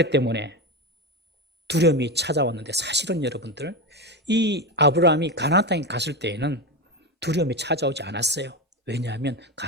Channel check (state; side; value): normal; both; correlation 0.17